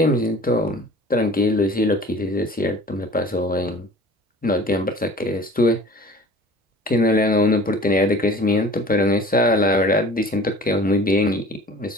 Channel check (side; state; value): both; normal; correlation 0.44